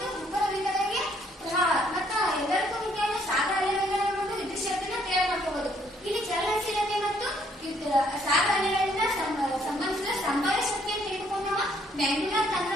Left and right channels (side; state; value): both; normal; correlation 0.66